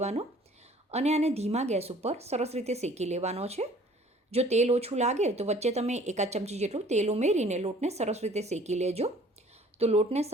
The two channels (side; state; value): both; normal; correlation 0.53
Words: અને આને ધીમા ગેસ ઉપર સરસ રીતે શેકી લેવાનો છે. જો તેલ ઓછું લાગે તો વચ્ચે તમે 1 ચમચી જેટલું તેલ ઉમેરીને લોટને સરસ રીતે શેકી લેજો. તો લોટને